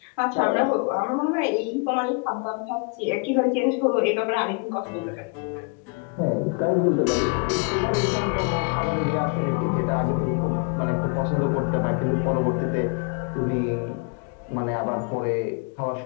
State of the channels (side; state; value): right; quieter; 34.9 dB